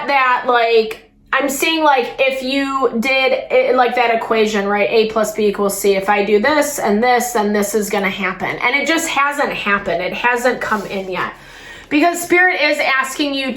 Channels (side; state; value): both; identical; correlation 1.00